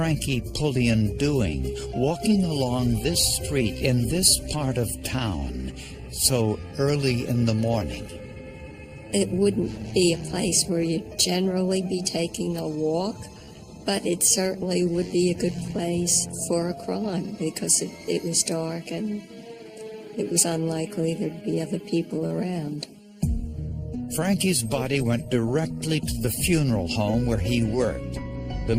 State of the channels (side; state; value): both; identical; correlation 1.00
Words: Pullian doing, walking along this street in this part of town so early in the morning? It wouldn't be a place where you'd generally be taking a walk, but it certainly would be a good place for a crime because it was dark and it was unlikely there'd be other people around. Frankie's body went directly to the funeral home where he worked. The